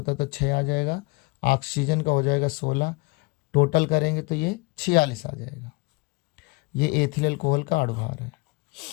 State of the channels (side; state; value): right; quieter; 26.2 dB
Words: तो 6 आ जाएगा, ऑक्सीजन का हो जाएगा 16, टोटल करेंगे तो ये 46 आ जाएगा। ये एथिल अल्कोहल का अणुभार है।